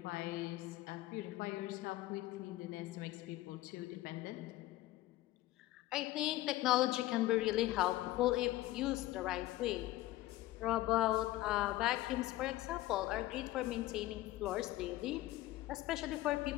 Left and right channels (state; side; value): quieter; right; 16.8 dB